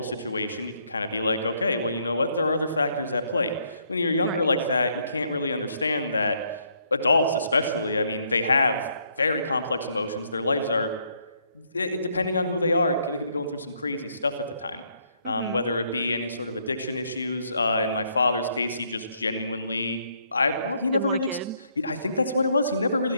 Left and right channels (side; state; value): both; inverted; correlation -0.71